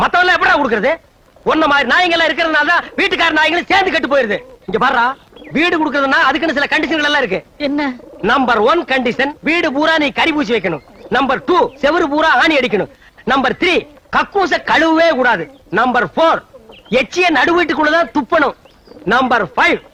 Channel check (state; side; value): identical; both; correlation 1.00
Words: மத்தவங்க எப்படா கொடுக்கறது? ஒன்ன மாதிரி நாய்கள் இருக்கிறதுனால தான் வீட்டுக்கார நாய்களும் சேர்ந்து கட்டு போயிருது. இங்க பாருடா, வீடு கொடுக்கறதுன்னா அதுக்குன்னு சில கண்டிஷன்கள் எல்லாம் இருக்கு. என்ன? நம்பர் 1 கண்டிஷன், வீடு பூரா நீ கறி பூசி வைக்கணும். நம்பர் 2, செவரு பூரா ஆணி அடிக்கணும். நம்பர் 3, கக்கூச கழுவவே கூடாது. நம்பர் 4, எச்சிய நடு வீட்டுக்குள்ளதான் துப்பணும். நம்பர் 5,